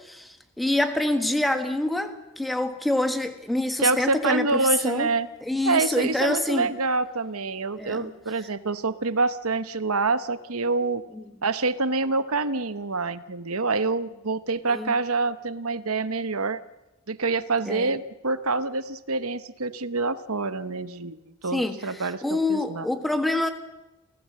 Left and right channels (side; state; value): both; normal; correlation 0.00